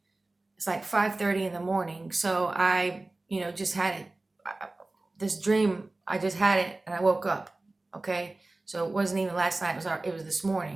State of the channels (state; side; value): quieter; left; 3.0 dB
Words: it's like 5:30 in the morning. So I, just had it. This dream, I just had it and I woke up. Okay, so it wasn't even last night. It was this